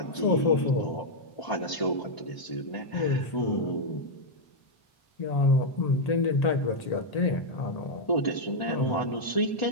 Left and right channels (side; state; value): right; late; 1.0 ms